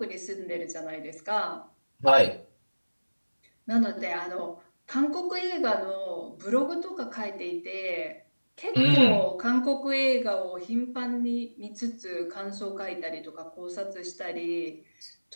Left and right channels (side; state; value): both; inverted; correlation -1.00